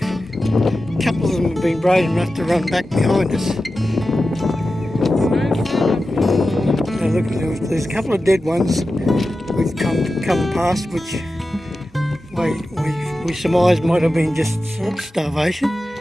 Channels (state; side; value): normal; both; correlation 0.93